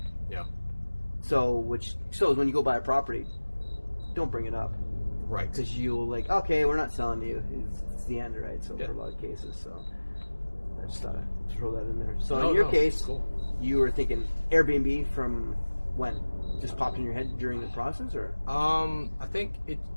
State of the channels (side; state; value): both; inverted; correlation -1.00